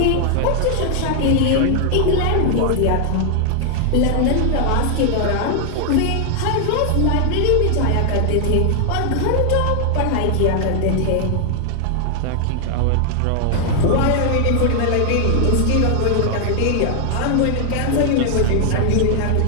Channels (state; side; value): different; both; correlation 0.00